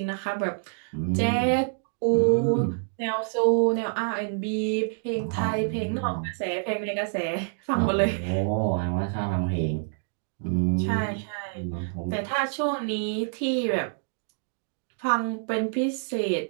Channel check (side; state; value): left; silent; digital silence